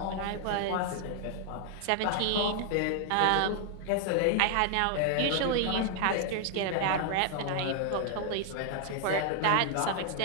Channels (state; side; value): different; both; correlation 0.00